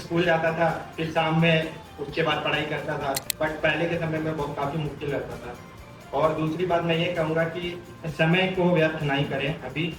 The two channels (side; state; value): both; identical; correlation 1.00